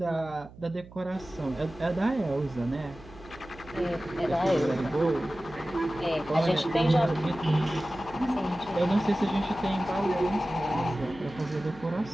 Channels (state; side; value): noise; right; hum, 20 dB below the sound